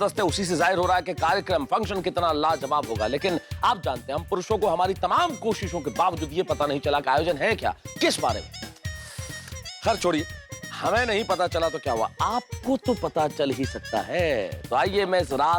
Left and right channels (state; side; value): identical; both; correlation 1.00